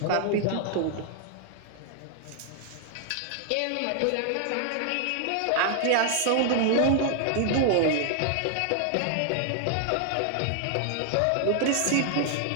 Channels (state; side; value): different; both; correlation 0.00